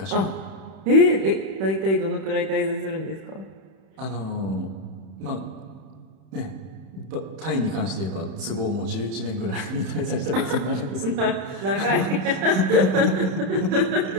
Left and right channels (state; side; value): late; left; 31 ms